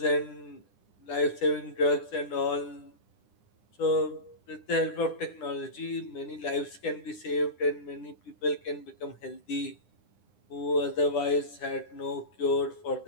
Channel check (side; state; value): right; late; 10 ms